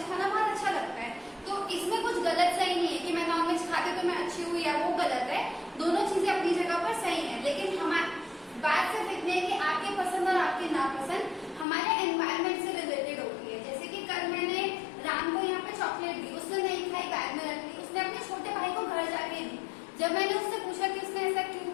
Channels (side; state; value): right; drops out; at 11.7 s